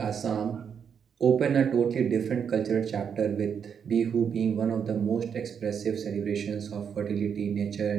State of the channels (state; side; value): quieter; left; 7.3 dB